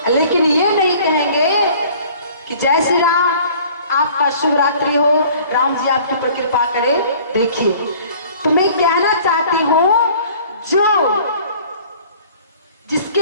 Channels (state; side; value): inverted; both; correlation -0.51